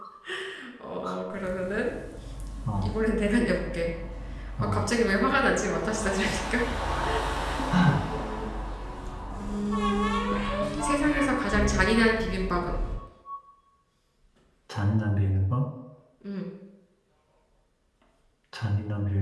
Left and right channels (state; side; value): identical; both; correlation 1.00